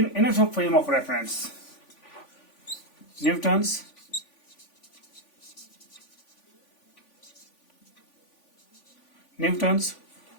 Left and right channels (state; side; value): late; right; 3.5 ms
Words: inertial frame of reference Newton's